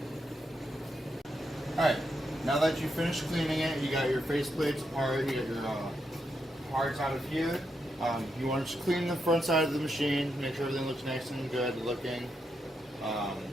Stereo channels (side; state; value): both; normal; correlation 0.82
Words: Alright, now that you finished cleaning it, you got your face plates apart, you got your parts out of here. You want to just clean the front side of the machine, make sure everything looks nice and good looking.